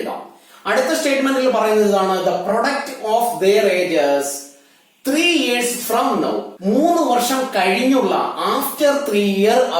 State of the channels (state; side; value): identical; both; correlation 1.00